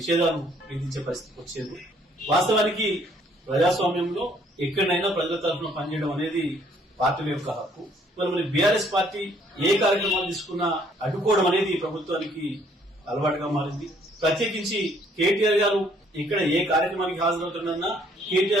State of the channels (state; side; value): normal; both; correlation 0.63